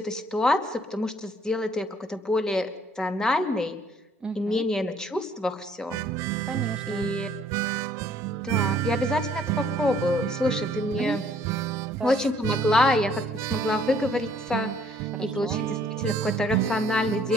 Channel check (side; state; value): both; normal; correlation 0.61